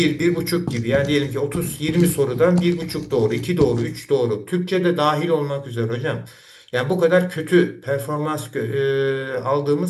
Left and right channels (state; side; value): identical; both; correlation 1.00